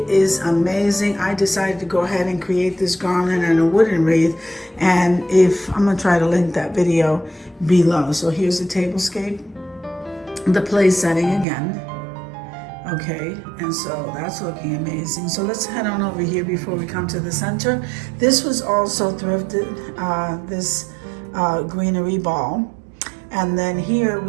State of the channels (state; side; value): drops out; left; at 11.5 s